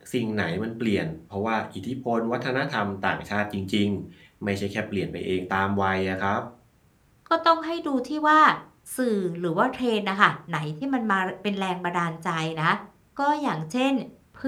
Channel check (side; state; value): both; identical; correlation 1.00